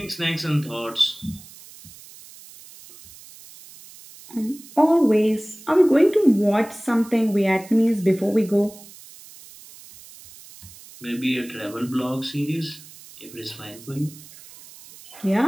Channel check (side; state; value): right; noise; hiss, 20 dB below the sound